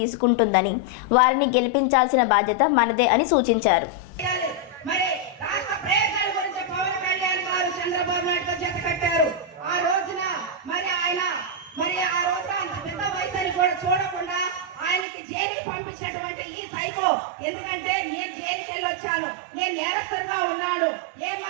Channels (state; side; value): drops out; left; at 15.1 s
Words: వారిని గెలిపించాల్సిన బాధ్యత మనదే అని సూచించారు. చూడకుండా ఆయనకి జైలు పంపించేటువంటి ఈ సైకో, ఎందుకంటే నేను జైలుకి వెళ్ళి వచ్చాను, నేను నేరస్తుగా ఉన్నాను, ఏ